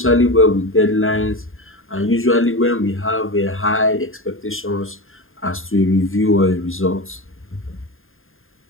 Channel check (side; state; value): right; late; 0.60 ms